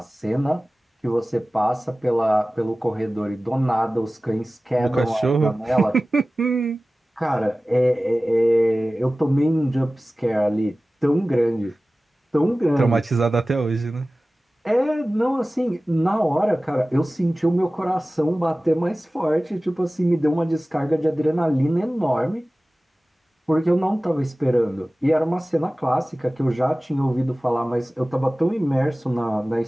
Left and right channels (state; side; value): normal; both; correlation 0.97